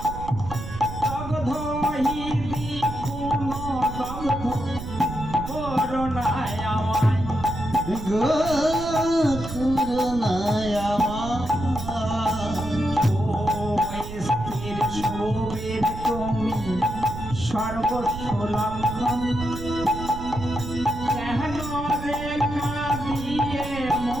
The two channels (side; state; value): right; noise; rumble, 9 dB below the sound